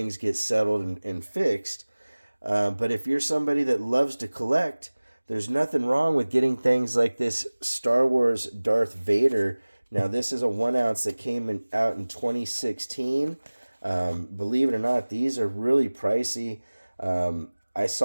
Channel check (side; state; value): both; inverted; correlation -1.00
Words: get settled and fixed. But if you're somebody that loves to collect, there's nothing wrong with getting things like this Star Wars Darth Vader. Now, this is a 1 ounce that came out in 2016. Believe it or not, these are really pricey. I